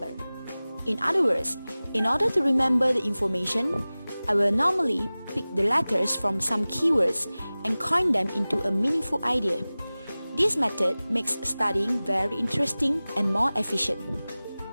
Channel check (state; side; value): inverted; both; correlation -0.98